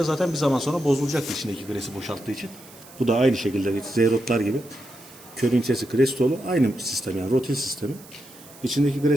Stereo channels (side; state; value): right; noise; hiss, 21 dB below the sound